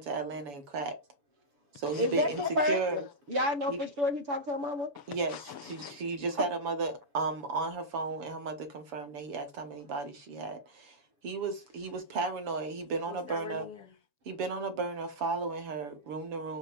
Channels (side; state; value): left; late; 7.0 ms